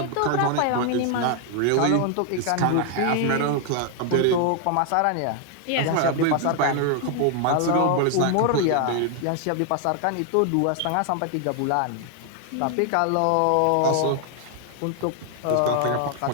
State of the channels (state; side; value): different; both; correlation 0.00